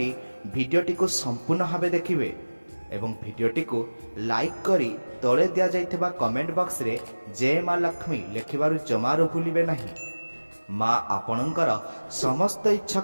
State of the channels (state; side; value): inverted; both; correlation -1.00